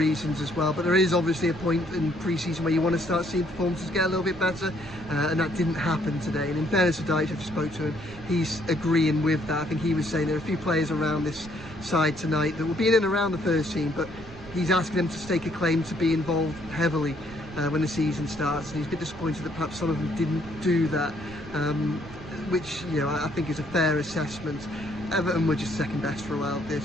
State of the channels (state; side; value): noise; right; rumble, 20 dB below the sound